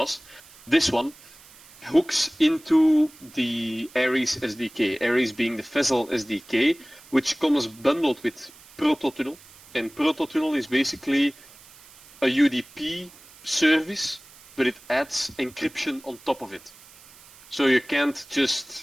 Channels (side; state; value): right; noise; hiss, 23 dB below the sound